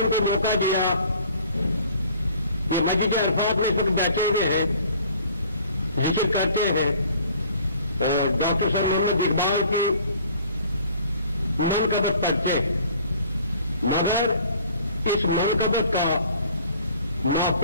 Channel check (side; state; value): both; inverted; correlation -0.53